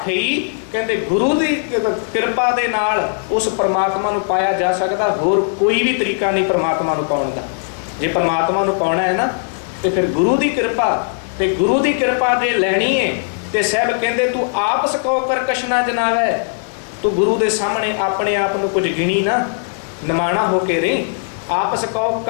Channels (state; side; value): silent; right; digital silence